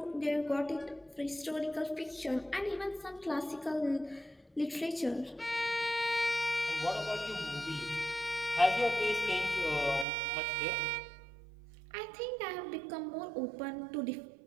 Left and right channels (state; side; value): drops out; left; at 10.1 s